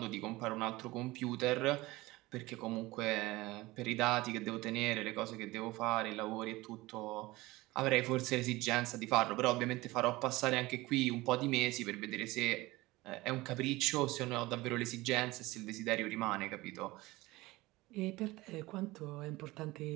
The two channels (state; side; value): quieter; left; 20.1 dB